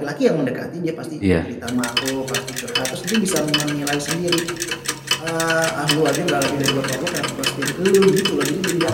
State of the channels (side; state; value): both; identical; correlation 1.00